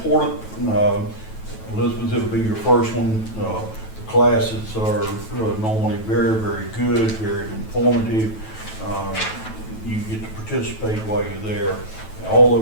Elizabeth, it'll be your first one. The classes are normally very, very good, very informative. You get to participate while you're there. All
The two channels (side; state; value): right; late; 9.2 ms